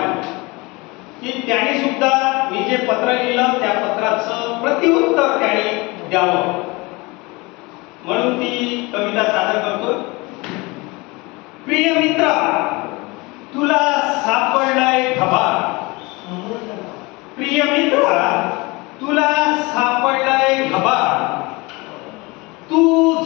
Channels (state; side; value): quieter; right; 24.7 dB